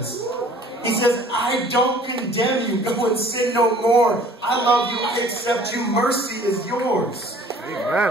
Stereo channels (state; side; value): normal; both; correlation 0.52